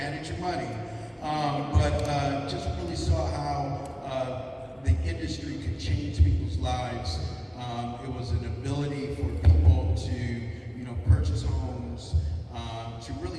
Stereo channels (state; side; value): identical; both; correlation 1.00